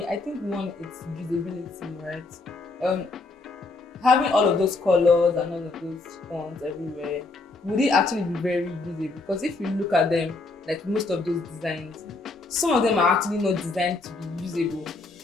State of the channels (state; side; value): quieter; right; 3.4 dB